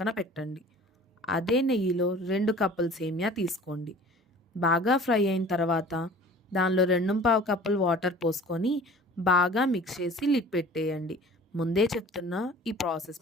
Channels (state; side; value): normal; both; correlation 0.45